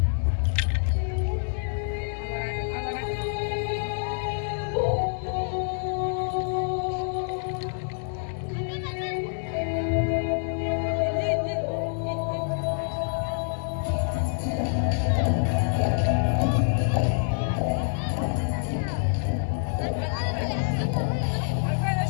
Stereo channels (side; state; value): right; silent; digital silence